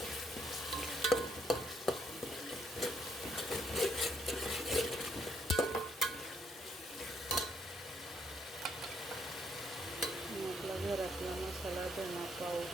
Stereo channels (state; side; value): normal; both; correlation 0.72